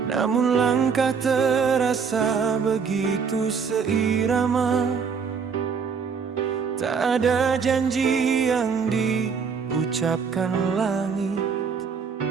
namun langkah terasa begitu seirama. Tak ada janji yang diucapkan langit,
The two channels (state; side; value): quieter; left; 5.9 dB